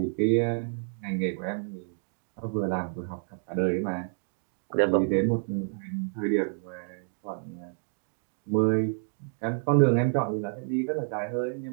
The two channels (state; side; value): silent; left; digital silence